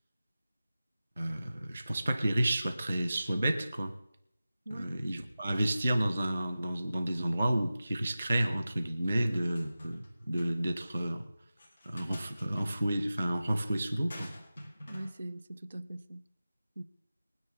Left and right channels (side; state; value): both; inverted; correlation -0.95